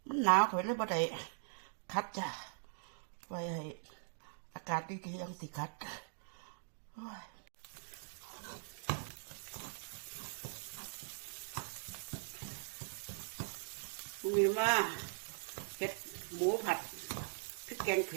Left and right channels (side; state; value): left; silent; digital silence